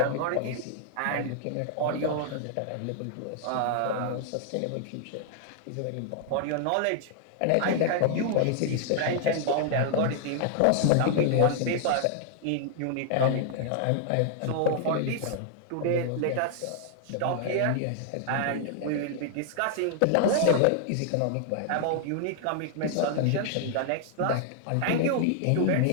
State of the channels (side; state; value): both; different; correlation 0.00